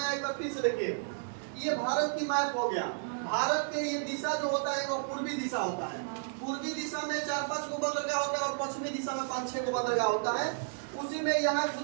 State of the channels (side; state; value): left; silent; digital silence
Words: आया एक बार फिर से देखिए। ये भारत की मैप हो गया। भारत के ये दिशा जो होता है वो पूर्वी दिशा होता है। पूर्वी दिशा में 4-5 को बंदरगाह होता है, और पश्चिमी दिशा में 5-6 को बंदरगाह होता है। उसी में यहाँ